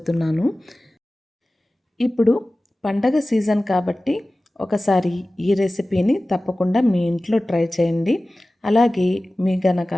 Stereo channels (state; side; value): normal; both; correlation 0.97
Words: ఇప్పుడు పండగ సీజన్ కాబట్టి ఒకసారి ఈ రెసిపీని తప్పకుండా మీ ఇంట్లో ట్రై చేయండి. అలాగే మీ గనక